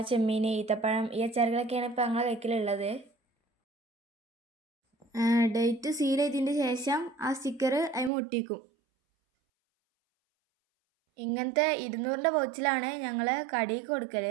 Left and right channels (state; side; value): drops out; left; at 8.1 s